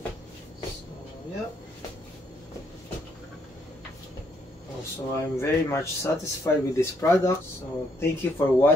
So yeah. Also, I'm very much satisfied with this product. So thank you for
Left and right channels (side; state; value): both; normal; correlation 0.73